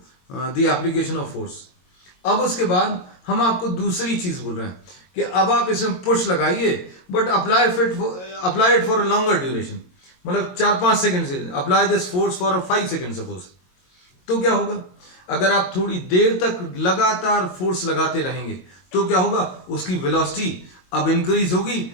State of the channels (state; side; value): late; right; 22 ms